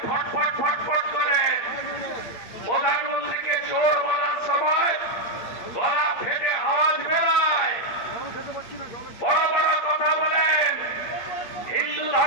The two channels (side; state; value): right; late; 8.5 ms